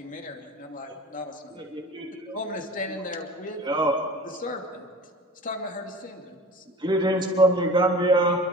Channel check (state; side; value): normal; both; correlation 0.39